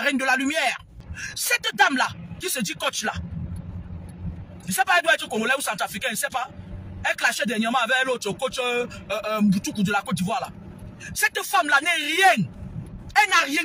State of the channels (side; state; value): both; identical; correlation 1.00